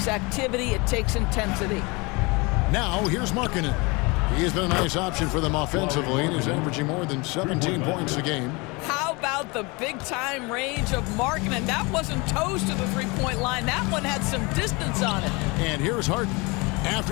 activity, it takes intensity. Now here's Markkanen. He has been a nice option for them offensively and is averaging more than 17 points a game. How about the big-time range of Markkanen? That wasn't toes to the three-point line. That one had some distance on it. And here's Harden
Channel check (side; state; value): right; quieter; 26.9 dB